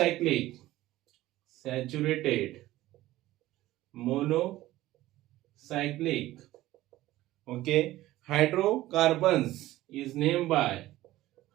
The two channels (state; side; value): quieter; left; 16.1 dB